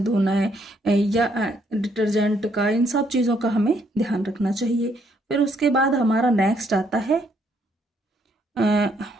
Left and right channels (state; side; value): normal; both; correlation 0.70